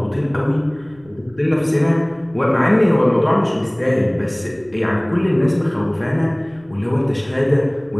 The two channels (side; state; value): right; noise; rumble, 28 dB below the sound